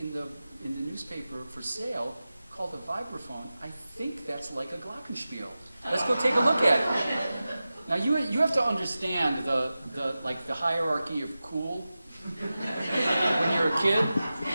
newspaper for sale called a vibraphone. I think that's like a glockenspiel. Let's go take a look at it." Now you have to understand the hierarchy of cool. When you're a kid,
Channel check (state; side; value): inverted; both; correlation -0.95